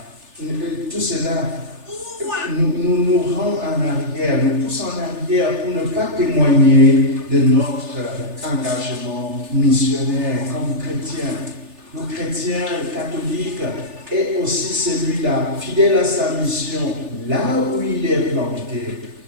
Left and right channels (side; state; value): left; late; 3.4 ms